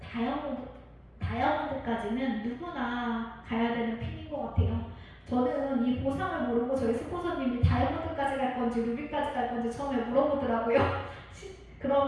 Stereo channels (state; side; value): identical; both; correlation 1.00